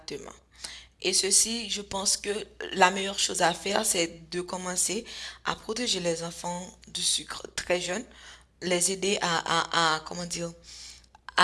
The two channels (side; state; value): both; identical; correlation 1.00